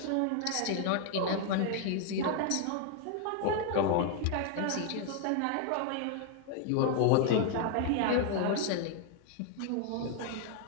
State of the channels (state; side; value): different; both; correlation 0.00